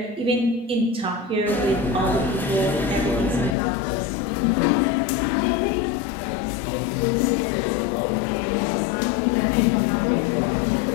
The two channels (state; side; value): drops out; right; at 3.6 s